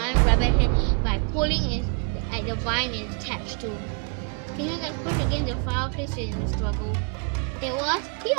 rabbit head by pulling it at the vine it's attached to. Kingo gets pushed against the fireplace in the struggle. It was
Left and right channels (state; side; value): quieter; left; 38.1 dB